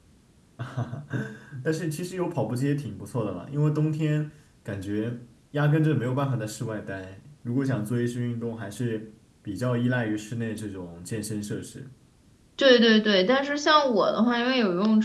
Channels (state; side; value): identical; both; correlation 1.00